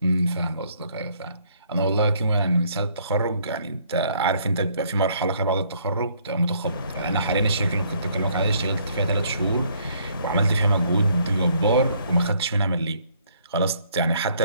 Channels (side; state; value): both; inverted; correlation -0.65